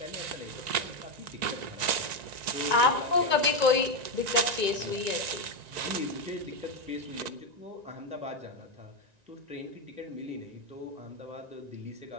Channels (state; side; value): late; left; 1.9 ms